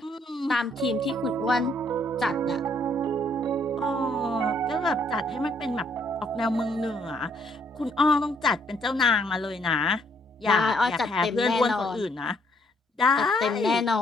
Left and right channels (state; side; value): normal; both; correlation 0.68